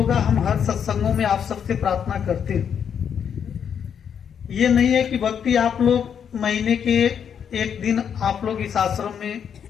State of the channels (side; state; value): right; quieter; 7.9 dB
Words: हम हर सत्संगों में आप सबसे प्रार्थना करते हैं। ये नहीं है कि भक्ति आप लोग महीने के एक दिन आप लोग इस आश्रम में